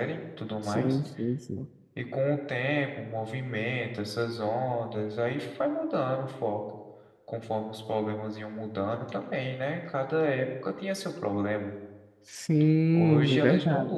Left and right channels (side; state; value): both; identical; correlation 1.00